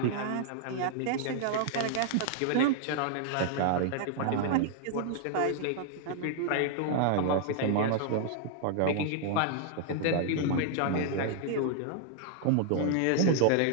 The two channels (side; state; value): both; different; correlation -0.01